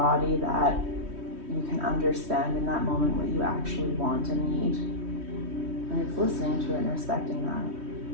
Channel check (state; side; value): late; left; 3.1 ms